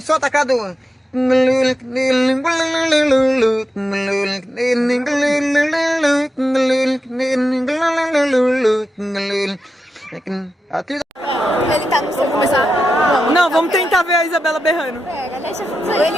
Solta, Cadu. Ele tá no seu começar. Não, vamos tentar ver a Isabela berrando. Pega, deixa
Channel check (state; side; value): normal; both; correlation 0.89